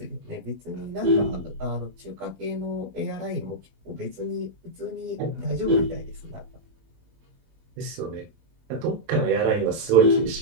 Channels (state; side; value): late; left; 20 ms